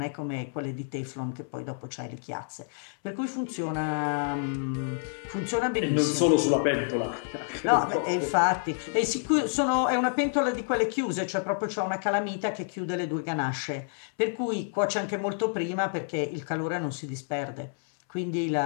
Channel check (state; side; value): silent; right; 59 dB below the other